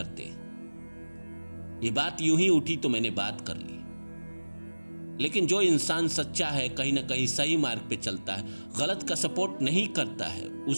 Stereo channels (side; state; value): both; inverted; correlation -1.00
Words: ये बात यूं ही उठी तो मैंने बात कर ली, लेकिन जो इंसान सच्चा है, कहीं ना कहीं सही मार्ग पे चलता है, गलत का सपोर्ट नहीं करता है,